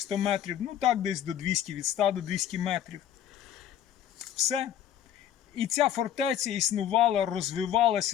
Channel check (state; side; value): quieter; right; 10.4 dB